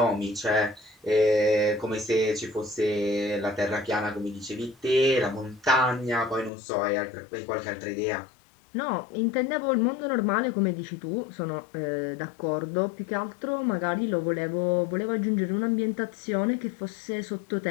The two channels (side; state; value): right; drops out; at 6.5 s